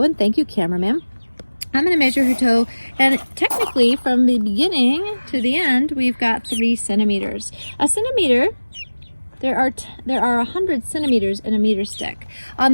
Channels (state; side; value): inverted; both; correlation -1.00